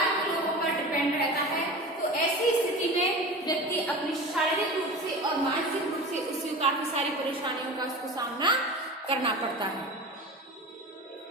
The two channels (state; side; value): normal; both; correlation 0.32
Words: के लोगों पर डिपेंड रहता है। तो ऐसी स्थिति में व्यक्ति अपनी शारीरिक रूप से और मानसिक रूप से उससे काफी सारी परेशानियों का उसको सामना करना पड़ता है।